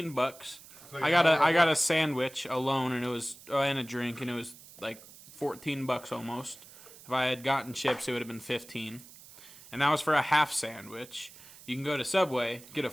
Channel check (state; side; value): noise; right; hiss, 20 dB below the sound